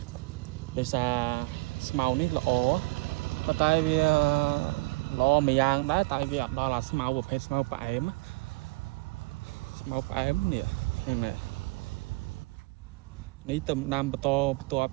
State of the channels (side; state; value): left; quieter; 23.7 dB